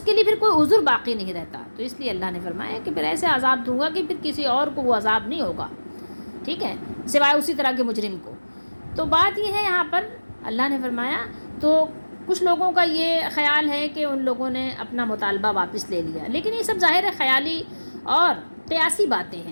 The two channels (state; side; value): inverted; both; correlation -1.00